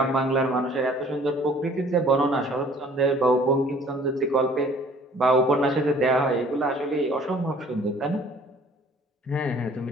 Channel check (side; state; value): both; normal; correlation 0.54